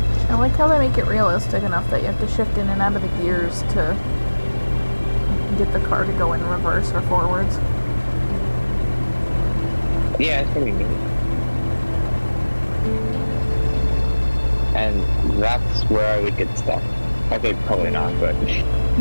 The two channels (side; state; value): both; inverted; correlation -1.00